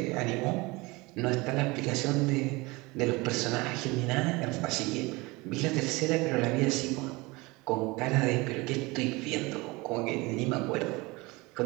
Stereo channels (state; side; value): quieter; left; 23.7 dB